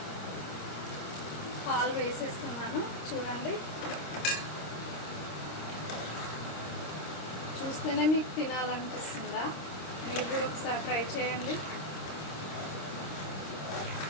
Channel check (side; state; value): right; late; 26 ms